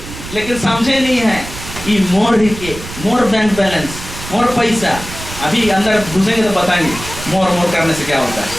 लेकिन समझे नहीं है, ये मोर बैंक बैलेंस, मोर पैसा। अभी अंदर घुसेंगे तो बताएंगे मोर करने से क्या होता है।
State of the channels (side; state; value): right; noise; rumble, 12 dB below the sound